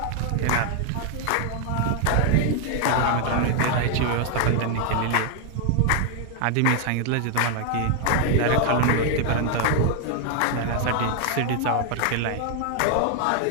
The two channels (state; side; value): different; both; correlation 0.00